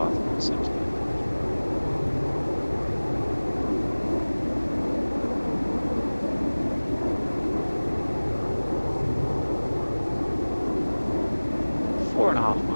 on centre. Four and a half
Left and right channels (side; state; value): both; inverted; correlation -1.00